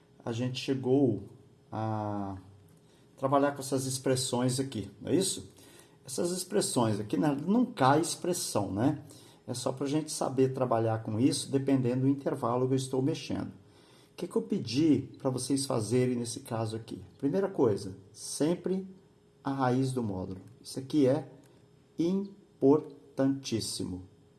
a gente chegou a trabalhar com essas expressões aqui, não é isso? Essas expressões aqui não cai expressão, né? É só para a gente saber trabalhar com isso, dependendo do intervalo que eu estou mexendo. O que eu pedi para vocês fazerem nesse caso aqui? Primeira coisa, sempre a raiz do módulo. Isso aqui é importantíssimo.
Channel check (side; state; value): both; identical; correlation 1.00